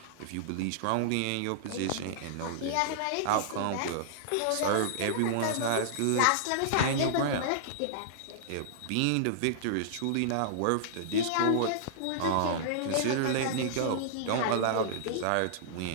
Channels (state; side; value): different; both; correlation -0.02